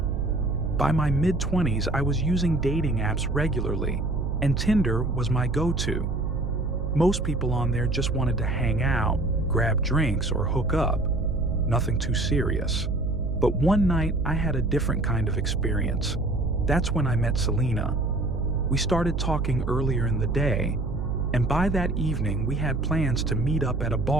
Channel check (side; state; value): right; noise; hum, 1 dB below the sound